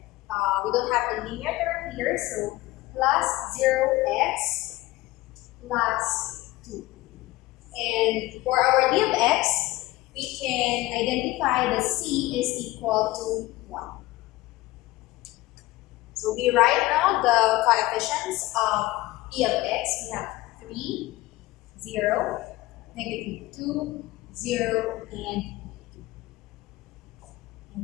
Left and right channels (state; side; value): quieter; right; 18.7 dB